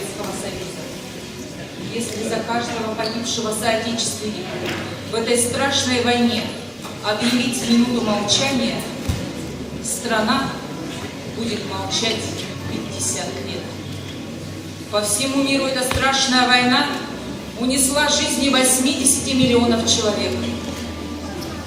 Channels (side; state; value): both; identical; correlation 1.00